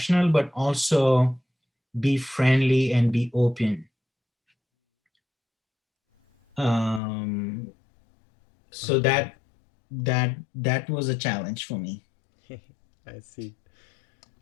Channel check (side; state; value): right; drops out; at 7.0 s